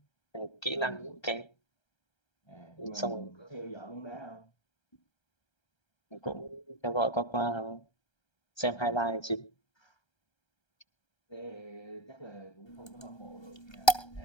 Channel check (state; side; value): late; right; 1.3 ms